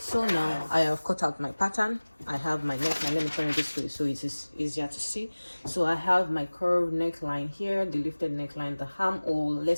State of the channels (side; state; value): both; inverted; correlation -1.00